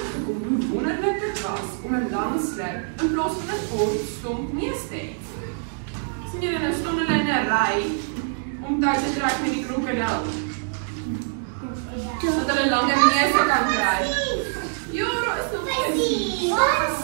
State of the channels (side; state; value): left; silent; digital silence